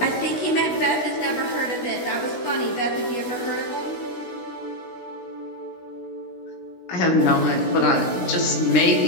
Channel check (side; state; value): right; late; 16 ms